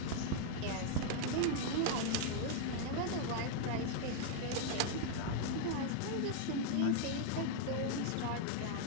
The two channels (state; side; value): different; both; correlation 0.00